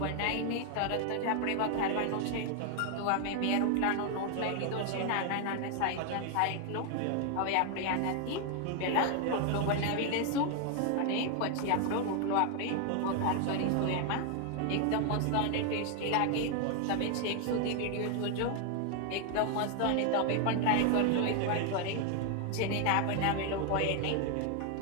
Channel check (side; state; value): both; different; correlation 0.01